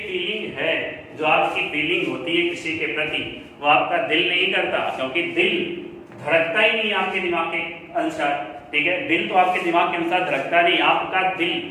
है, जो आपकी फीलिंग होती है किसी के प्रति, वो आपका दिल नहीं करता, क्योंकि दिल धड़कता ही नहीं आपके दिमाग के अनुसार, ठीक है। दिल तो आपके दिमाग के अनुसार धड़कता नहीं, आपका दिल,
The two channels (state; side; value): identical; both; correlation 1.00